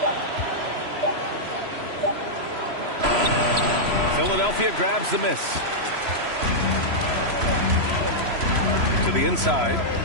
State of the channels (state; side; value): late; left; 3.0 ms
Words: Philadelphia grabs the miss. To the inside.